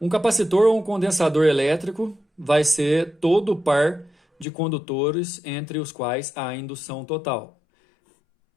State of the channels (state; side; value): drops out; right; at 4.5 s